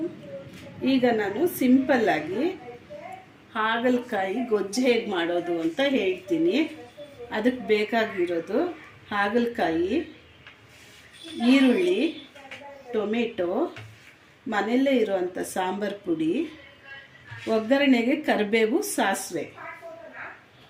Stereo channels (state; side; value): identical; both; correlation 1.00